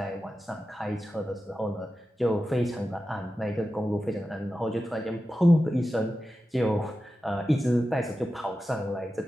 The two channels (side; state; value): both; normal; correlation 0.92